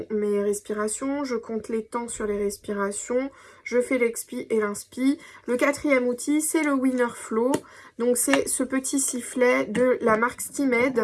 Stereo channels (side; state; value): both; identical; correlation 1.00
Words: mes respirations, je compte les temps sur les respirations, je fais l'expi et l'inspi. Le quatrième outil, c'est le Winner Flow. Donc, c'est ce petit sifflet de la marque